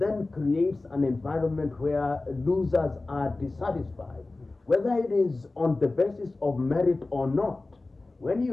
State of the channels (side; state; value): right; quieter; 3.2 dB